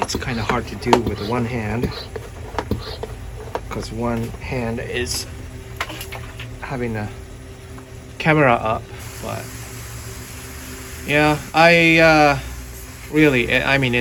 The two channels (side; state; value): both; identical; correlation 1.00